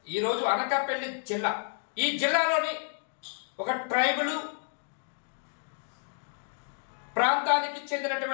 ఈరోజు అనకాపల్లి జిల్లా. ఈ జిల్లాలోని ఒక ట్రైబల్ ప్రాంతానికి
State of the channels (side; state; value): right; silent; digital silence